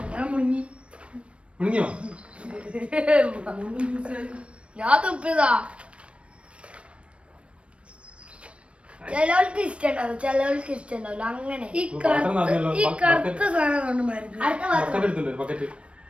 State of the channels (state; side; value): late; left; 0.060 ms